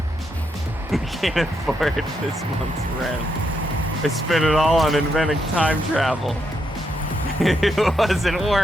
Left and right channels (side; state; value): both; normal; correlation 0.80